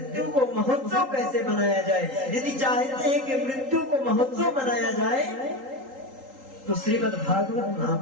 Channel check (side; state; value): left; late; 3.8 ms